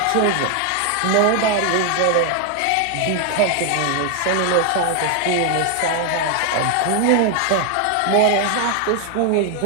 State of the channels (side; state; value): both; different; correlation 0.00